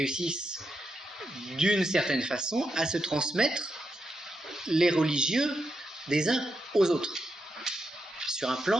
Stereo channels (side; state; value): both; normal; correlation 0.84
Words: d'une certaine façon à se transmettre les religieux des uns aux autres, sur un